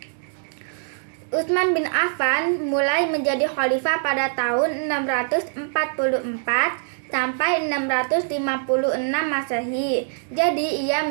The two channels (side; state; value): left; silent; digital silence